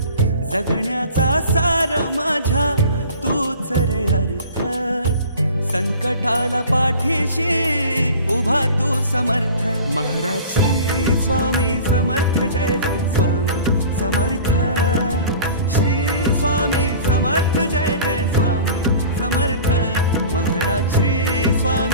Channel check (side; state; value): both; inverted; correlation -0.41